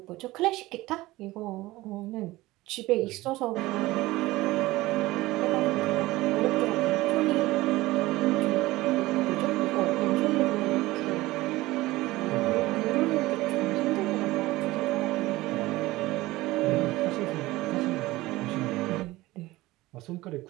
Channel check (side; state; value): left; quieter; 18.8 dB